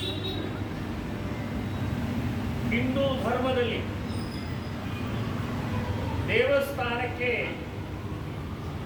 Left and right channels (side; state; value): both; identical; correlation 1.00